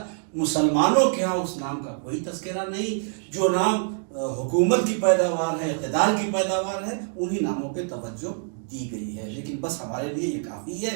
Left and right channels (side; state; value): left; silent; 61 dB below the other